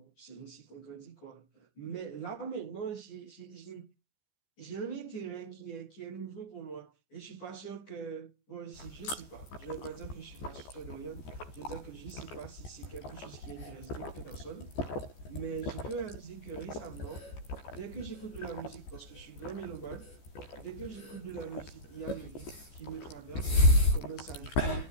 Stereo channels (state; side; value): late; right; 14 ms